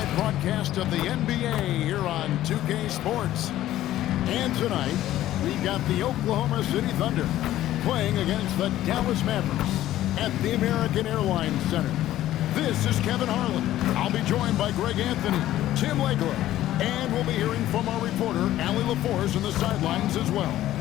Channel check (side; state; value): right; quieter; 13.8 dB